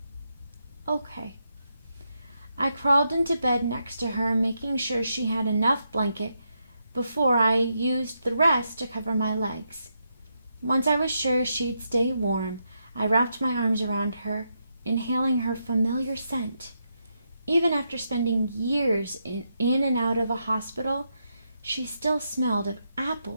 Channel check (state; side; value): inverted; both; correlation -0.82